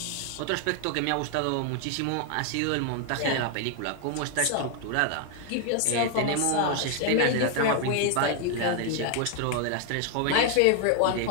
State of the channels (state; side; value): different; both; correlation 0.00